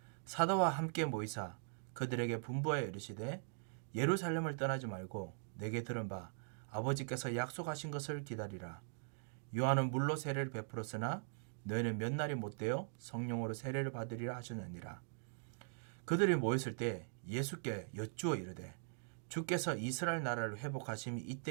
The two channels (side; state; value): left; silent; digital silence